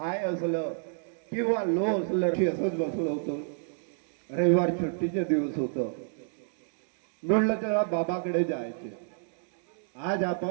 असलं किंवा लो असलं असंच बसलो होतो. रविवार सुट्टीचे दिवस होतं. म्हणलं तेव्हा बाबाकडे जायचे. आज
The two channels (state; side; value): silent; left; digital silence